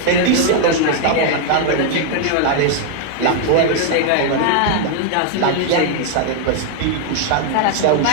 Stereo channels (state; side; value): different; both; correlation 0.00